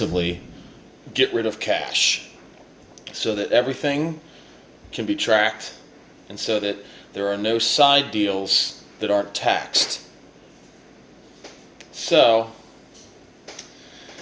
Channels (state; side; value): identical; both; correlation 1.00